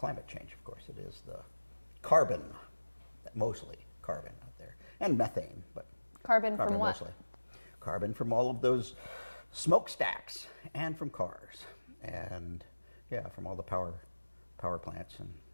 change. Of course, it is the carbon, mostly carbon out there, and methane, but carbon from what? Mostly. Carbon from all of those smokestacks, and from cars, and from all the power plants, and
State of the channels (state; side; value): inverted; both; correlation -1.00